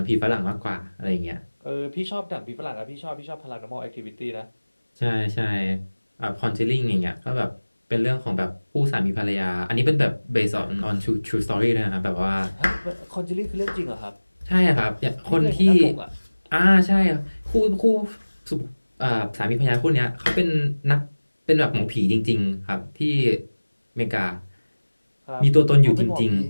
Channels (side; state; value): both; inverted; correlation -1.00